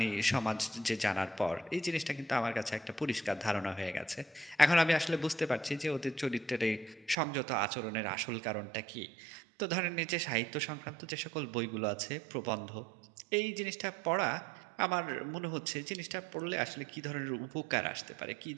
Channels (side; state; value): left; drops out; at 7.2 s